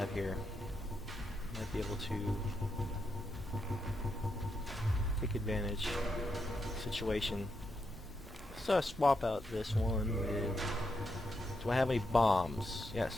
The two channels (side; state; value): both; normal; correlation 0.83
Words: here. Might be able to take advantage of the situation. Let's swap out this one with... Do I have any bombs?